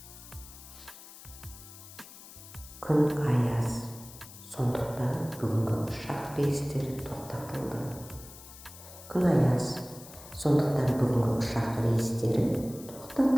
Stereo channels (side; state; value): left; noise; hiss, 17 dB below the sound